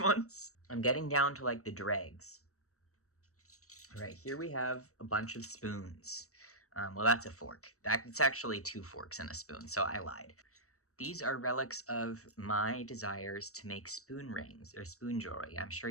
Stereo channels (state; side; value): late; right; 0.65 ms